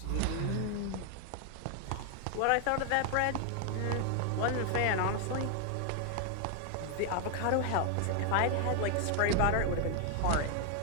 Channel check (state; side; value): different; both; correlation 0.00